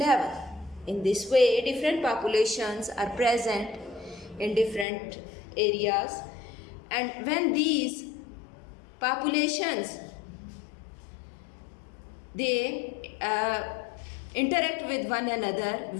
In this way, different populations are present in different areas, and when these populations, they interact with one another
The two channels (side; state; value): right; drops out; at 4.9 s